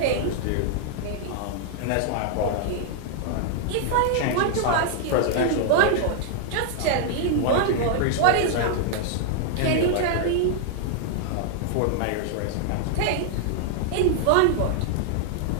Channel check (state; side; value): different; both; correlation 0.00